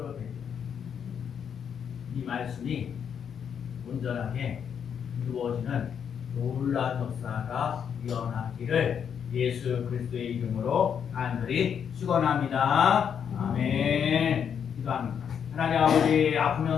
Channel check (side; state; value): right; quieter; 7.8 dB